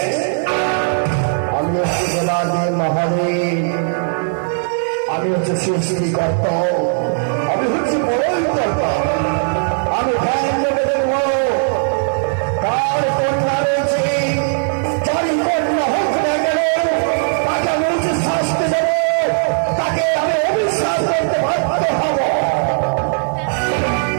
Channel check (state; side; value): silent; left; 68 dB below the other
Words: আমি হচ্ছে জেলাদের মহাদেব, আমি হচ্ছে সৃষ্টিকর্তা, আমি হচ্ছে বড়ই কর্তা। আমি ধ্যান দেবে দেব তার কন্যা রয়েছে, যারই কন্যা হোক না কেন তাকে আমি উচিত শাস্তি দেব, তাকে আমি অবিশ্বাস করতে বাধ্য হব।